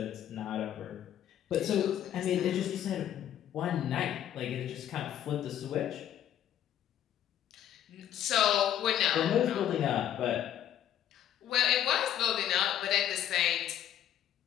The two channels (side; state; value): right; quieter; 10.9 dB